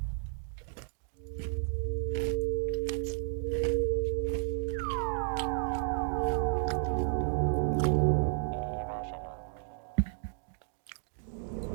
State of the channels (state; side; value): silent; left; digital silence